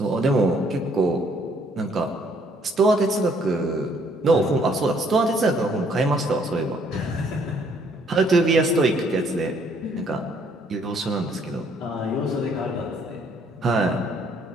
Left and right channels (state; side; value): normal; both; correlation 0.65